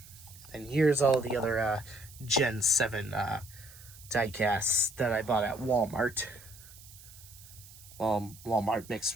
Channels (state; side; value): noise; right; hiss, 20 dB below the sound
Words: And here's all the other Gen 7 diecasts that I bought at Walmart. Well, Walmart mixed